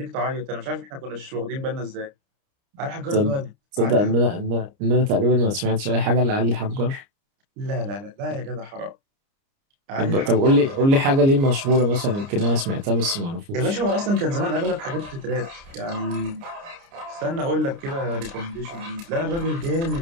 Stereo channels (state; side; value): late; left; 29 ms